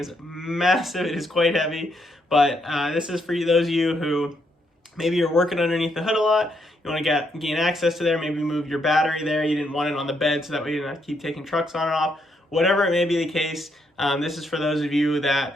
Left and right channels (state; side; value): normal; both; correlation 0.76